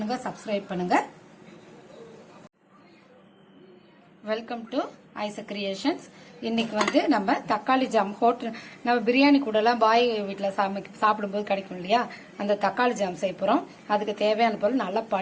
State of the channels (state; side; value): identical; both; correlation 1.00